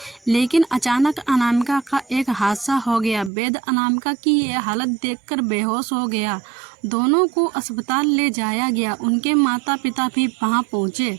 लेकिन अचानक अनामिका का एक हादसा हो गया। वेद अनामिका की यह हालत देखकर बेहोश हो गया। दोनों को अस्पताल ले जाया गया। उनके माता पिता भी वहां पहुंचे।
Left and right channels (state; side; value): drops out; left; at 3.3 s